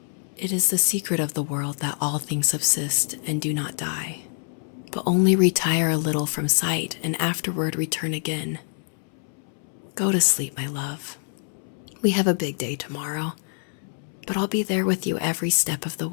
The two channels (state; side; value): silent; right; 61 dB below the other